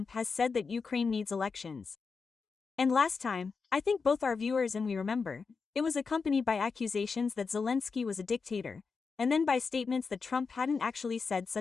has said that Ukraine needs elections. And last time, I think both our viewers and we remember, it was accompanied by accusations that Zelensky was a dictator, and then by statements that Trump hadn't actually said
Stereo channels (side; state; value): right; quieter; 5.0 dB